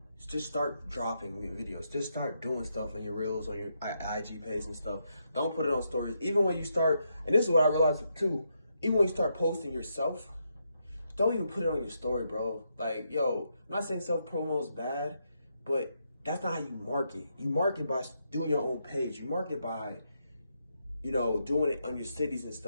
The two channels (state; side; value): inverted; both; correlation -0.81